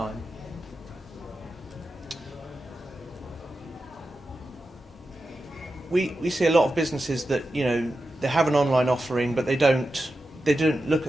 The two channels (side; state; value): both; normal; correlation 0.91